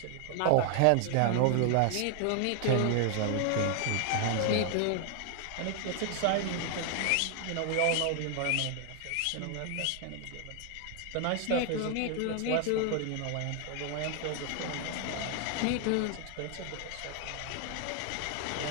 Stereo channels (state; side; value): different; both; correlation 0.00